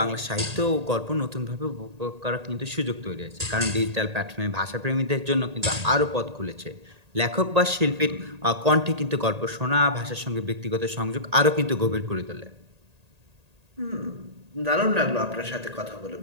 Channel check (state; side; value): late; left; 1.8 ms